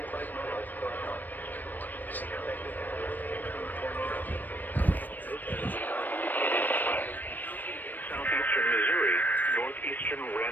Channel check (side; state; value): right; late; 0.089 ms